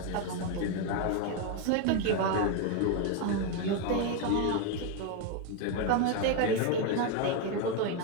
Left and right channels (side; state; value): both; different; correlation 0.02